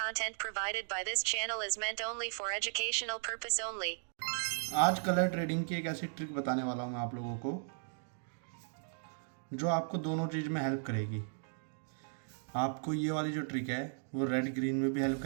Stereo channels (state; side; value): silent; left; digital silence